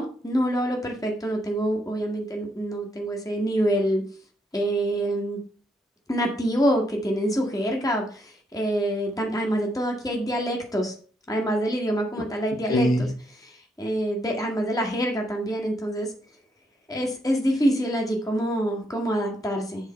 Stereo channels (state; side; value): normal; both; correlation 0.76